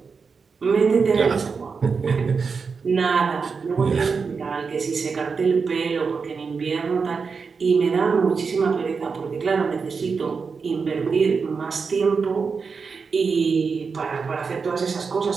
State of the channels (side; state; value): left; quieter; 5.2 dB